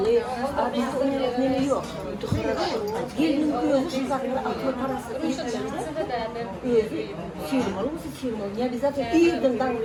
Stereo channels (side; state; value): both; identical; correlation 1.00